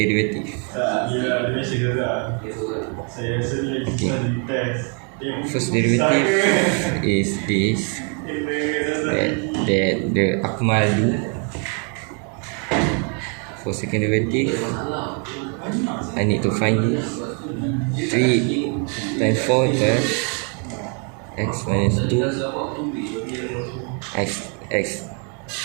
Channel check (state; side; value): quieter; left; 38.5 dB